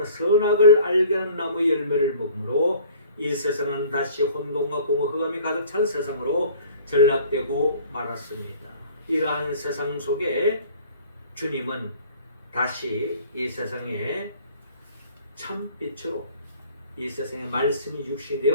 선악을 알게 하는 나무의 열매를 먹으므로 이 세상은 다시 혼돈과 공허 흑암이 가득 찬 세상으로 전락되고 말았습니다. 이러한 세상 속에 주님은 다시 이 세상에 참빛으로 이 세상에 말씀이 육신이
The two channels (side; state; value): both; inverted; correlation -0.50